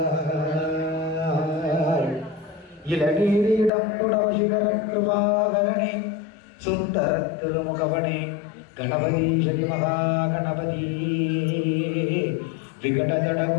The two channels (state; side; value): drops out; right; at 3.7 s